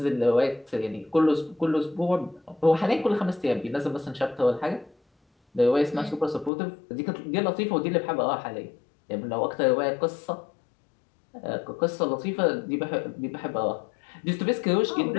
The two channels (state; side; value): drops out; right; at 6.5 s